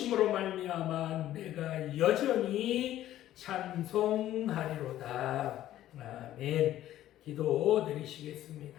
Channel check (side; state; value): right; quieter; 13.2 dB